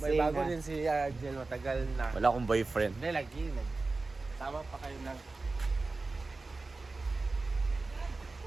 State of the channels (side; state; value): left; quieter; 3.6 dB